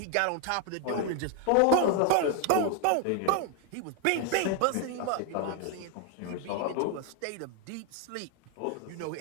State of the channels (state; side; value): different; both; correlation 0.01